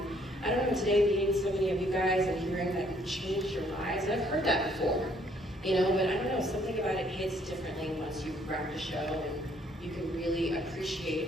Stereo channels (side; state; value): both; normal; correlation 0.65